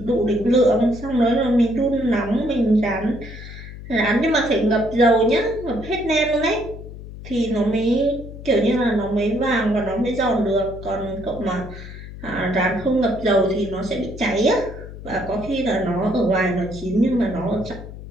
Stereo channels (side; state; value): left; noise; hum, 13 dB below the sound